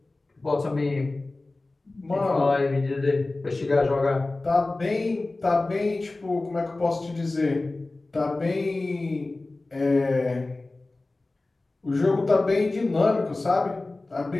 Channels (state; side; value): quieter; right; 3.1 dB